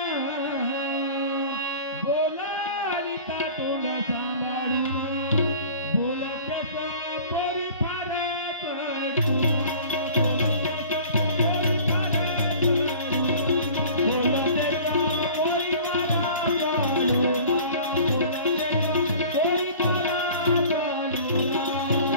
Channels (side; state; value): both; inverted; correlation -0.44